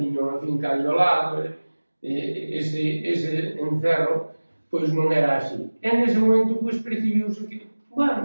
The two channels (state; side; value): inverted; both; correlation -1.00